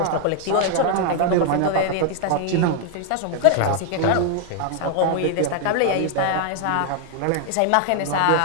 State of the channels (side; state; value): both; different; correlation 0.00